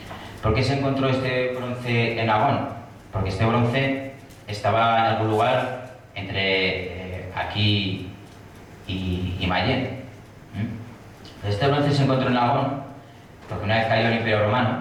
¿Por qué se encontró este bronce en Agón? Porque este bronce estaba en algún lugar entre aquí y Mayén. Este bronce se encontró en Agón porque una vez cayó el Imperio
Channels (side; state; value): both; identical; correlation 1.00